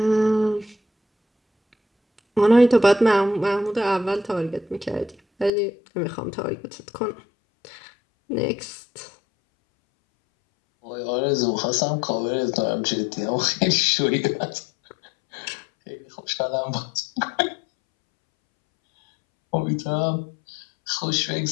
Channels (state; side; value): drops out; right; at 5.5 s